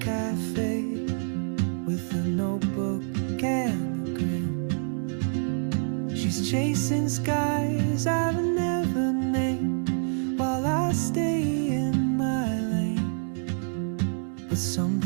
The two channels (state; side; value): silent; left; digital silence